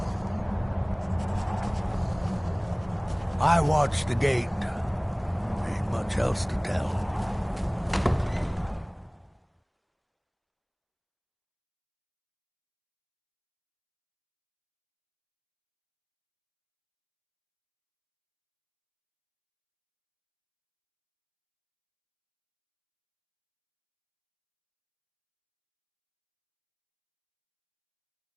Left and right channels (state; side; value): identical; both; correlation 1.00